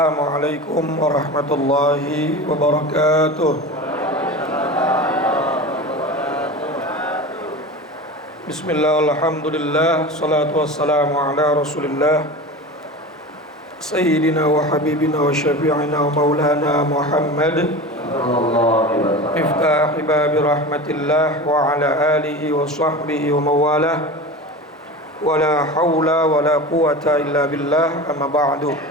warahmatullahi wabarakatuh. Bismillah, alhamdulillah, salatu wassalamu ala rasulillah Sayyidina wa habibina wa syafi'ina wa maulana Muhammad Miftahi babi rahmatillah wa ala alihi wa sahbihi wa mawalah wa la hawla wa la quwata illa billah, amma ba'du.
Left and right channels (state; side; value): normal; both; correlation 0.31